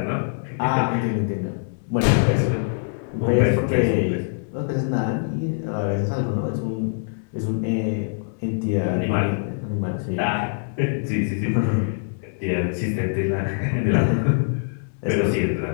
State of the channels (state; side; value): silent; right; 63 dB below the other